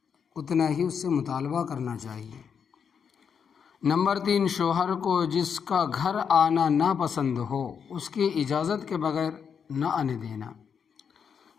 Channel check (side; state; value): right; quieter; 6.9 dB